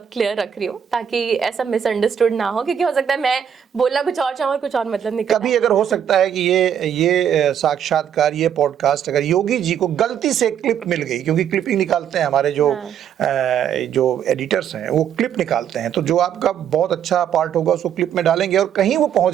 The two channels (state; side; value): quieter; left; 8.8 dB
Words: क्लियर रख रही हूँ ताकि ऐसा मिसअंडरस्टूड ना हो, क्योंकि हो सकता है मैं बोलना कुछ और चाहूँ और कुछ और मतलब निकल कभी अगर हो सकता है कि ये साक्षात्कार, ये पॉडकास्ट अगर योगी जी को गलती से क्लिप मिल गई, क्योंकि क्लिपिंग निकालते हैं हमारे जो एडिटर्स हैं, वो क्लिप निकालते हैं, तो जो आपका बहुत अच्छा पार्ट होगा उसको क्लिप में डालेंगे और कहीं वो पहुंच